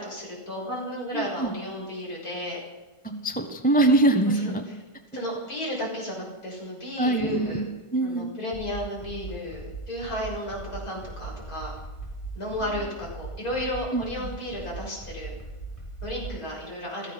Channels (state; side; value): late; right; 1.5 ms